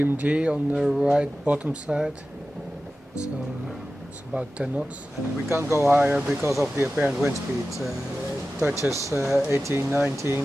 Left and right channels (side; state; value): both; normal; correlation 0.94